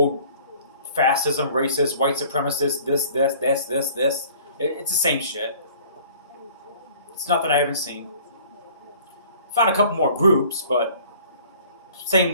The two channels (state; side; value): inverted; both; correlation -0.51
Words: fascism, racist, white supremacist, this. It's the same shit. It's nothing I haven't seen. Found a couple more groups, but